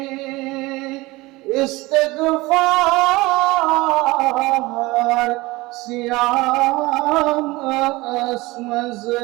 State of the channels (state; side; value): quieter; left; 21.2 dB